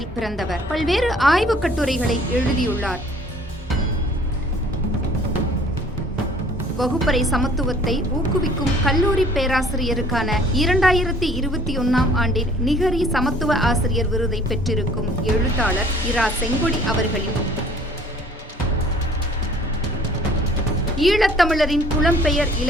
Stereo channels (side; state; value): both; normal; correlation 0.54